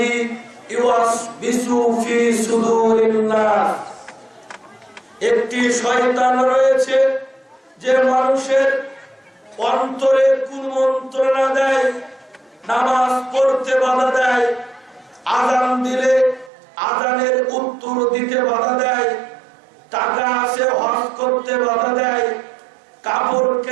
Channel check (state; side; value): drops out; left; at 16.5 s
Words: ইউওয়াসবিসু ফি সুদুরিন নাস। একটি শয়তান রয়েছে যে মানুষের অন্তরে কুমন্ত্রণা দেয়, নামাজ পড়তে বাধা দেয়, আযান দিলে আযানের উত্তর দিতে বাধা দেয়, টাকা আছে হজ করতে বাধা দেয়, কাপড়